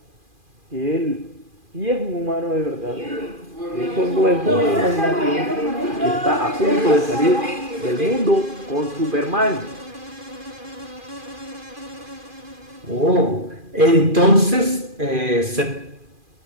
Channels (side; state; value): left; late; 2.4 ms